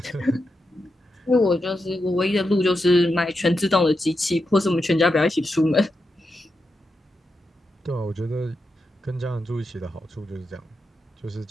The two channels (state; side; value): normal; both; correlation 0.87